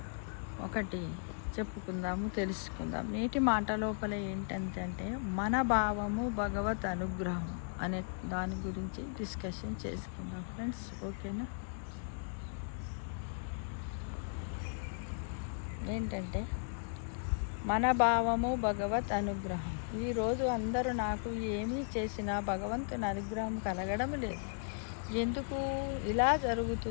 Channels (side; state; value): right; silent; digital silence